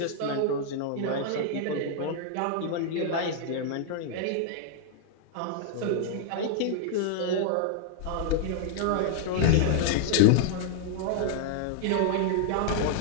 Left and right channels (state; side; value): different; both; correlation -0.01